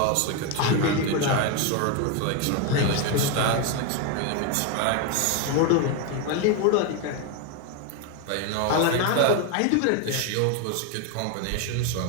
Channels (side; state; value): both; different; correlation 0.02